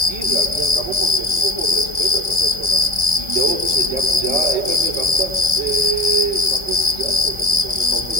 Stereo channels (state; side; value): late; left; 1.4 ms